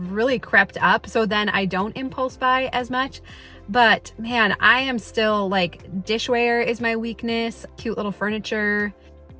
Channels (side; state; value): both; identical; correlation 1.00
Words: really crept up, so then I don't impulse buy as much. But man, I am still like, dishware is my weakness, cute little furniture.